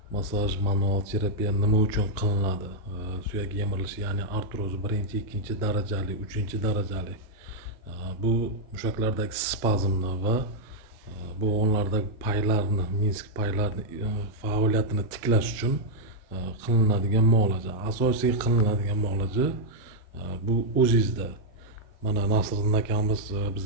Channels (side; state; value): both; normal; correlation -0.03